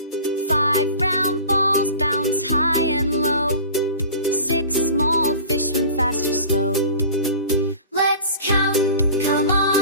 5 round balls bounce high and low. 6 small fish swim fast or slow. Let's count, come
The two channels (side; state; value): both; inverted; correlation -0.38